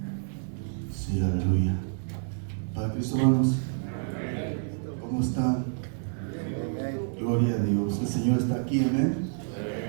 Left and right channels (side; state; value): left; silent; digital silence